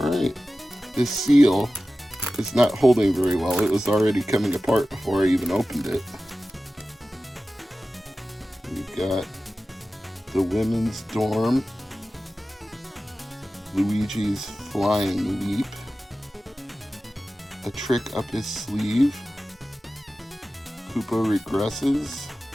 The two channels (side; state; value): both; normal; correlation 0.95